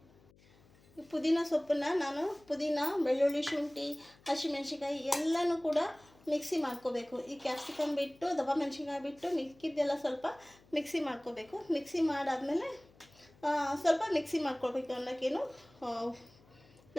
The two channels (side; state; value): left; noise; hum, 28 dB below the sound